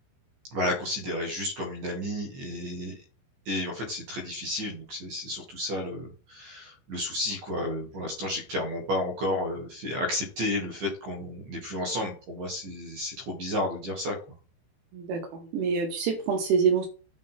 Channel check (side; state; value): left; late; 15 ms